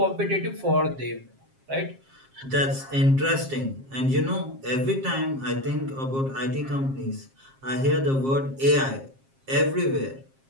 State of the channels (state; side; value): late; left; 7.5 ms